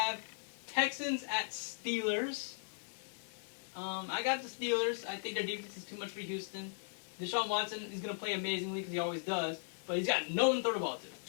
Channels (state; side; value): silent; right; digital silence